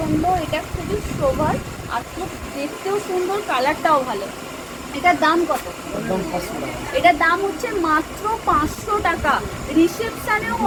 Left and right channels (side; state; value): both; identical; correlation 1.00